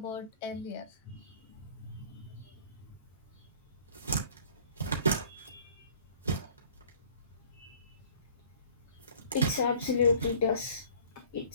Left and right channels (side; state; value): both; inverted; correlation -0.50